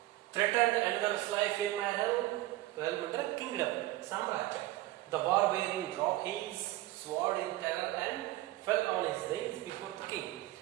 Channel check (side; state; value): left; quieter; 16.7 dB